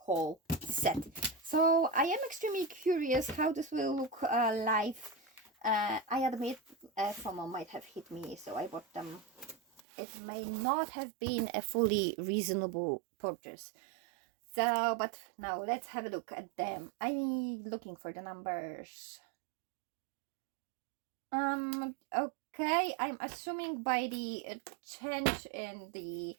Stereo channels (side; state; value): left; drops out; at 9.8 s